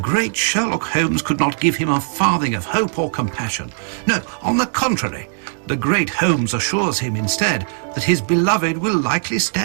Sherlock Holmes could not give him a farthing of hope or compassion. No, on the contrary, the great Holmes assures him instead that his beloved will likely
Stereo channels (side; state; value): left; silent; digital silence